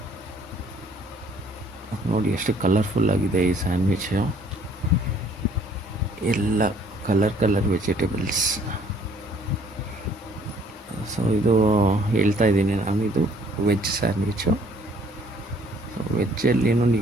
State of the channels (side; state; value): both; normal; correlation 0.60